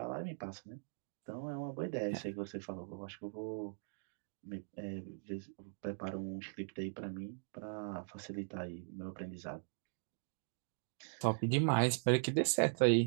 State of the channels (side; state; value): left; silent; digital silence